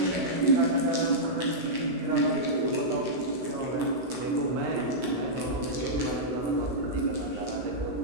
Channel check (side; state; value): left; late; 16 ms